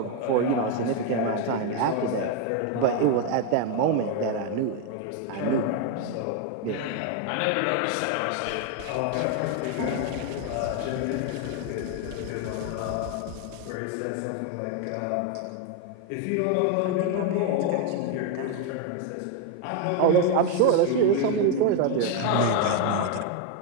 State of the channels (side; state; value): both; different; correlation 0.01